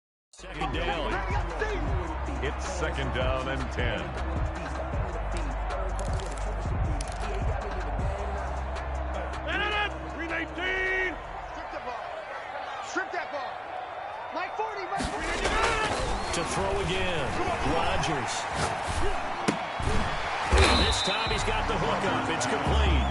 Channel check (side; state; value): both; identical; correlation 1.00